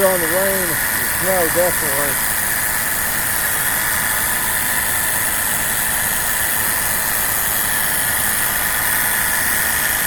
on the rain and snow, definitely.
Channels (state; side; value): noise; right; rumble, 10 dB below the sound